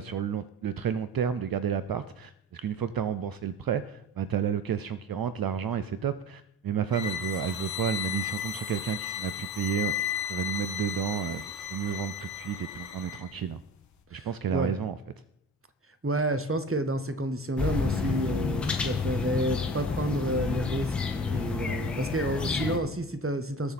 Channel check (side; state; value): both; normal; correlation 0.35